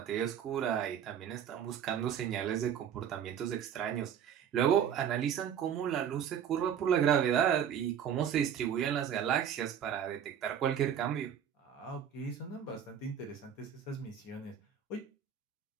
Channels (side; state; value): left; quieter; 8.8 dB